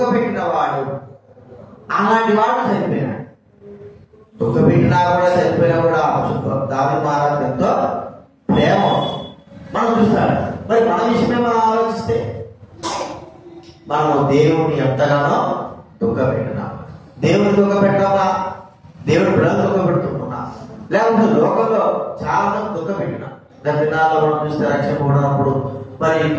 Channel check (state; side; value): identical; both; correlation 1.00